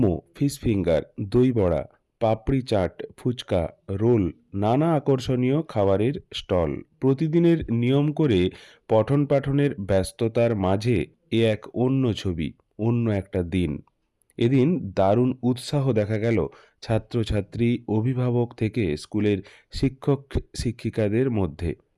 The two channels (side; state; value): both; identical; correlation 1.00